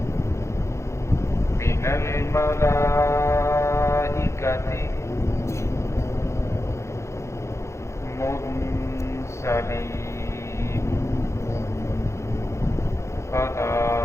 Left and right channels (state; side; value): late; right; 0.14 ms